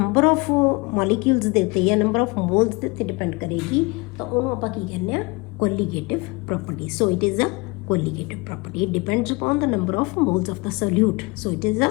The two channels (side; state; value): right; quieter; 26.8 dB